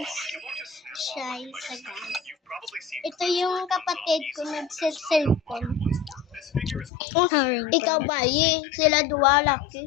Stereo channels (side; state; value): right; drops out; at 6.9 s